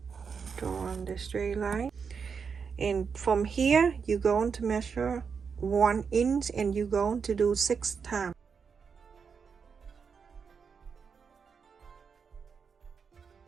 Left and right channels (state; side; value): quieter; left; 6.0 dB